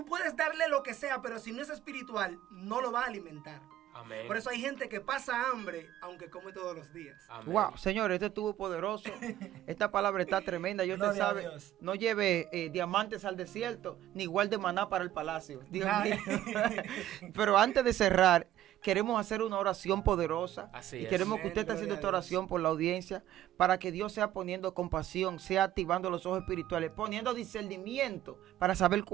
puedes darle lo que sea, pero si no es espiritual, no lo va a alimentar. Amén. Por eso hay gente que pasa hambre, aunque come todos los días. Amén. Wow, señor, este estuvo poderoso. Esta palabra está tremenda. Y usted Gloria a sabe, Dios. no lleve diamantes al desierto, ni guarde maná para el palacio. Dios mío. Pero antes de cerrar, queremos hacer una oración poderosa. Así y es. queremos que Amén, usted esté haciendo gloria esta a Dios. oración por la audiencia, para que Dios sea poniendo compasión, sea activando los ojos espirituales, poniendo discernimiento para saber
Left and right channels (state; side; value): quieter; left; 12.8 dB